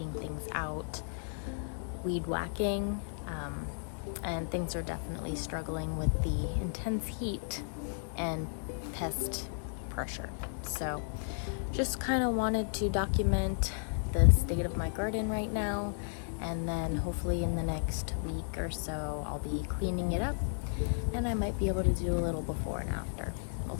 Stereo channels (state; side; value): silent; right; digital silence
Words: things out, weed whacking, and things are definitely struggling with the intense heat and pest pressure. So just kind of wanted to document the state of my garden right now, and then hopefully in the next week or so I'll be cleaning it up, and I might be able to do a little before and after. We'll